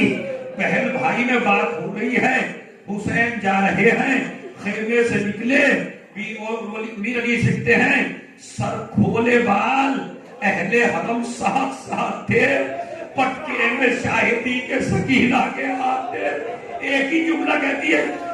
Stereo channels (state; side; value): identical; both; correlation 1.00